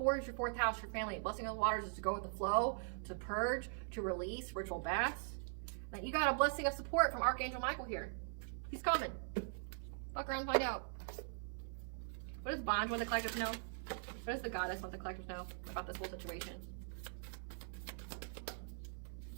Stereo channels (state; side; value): silent; left; 50 dB below the other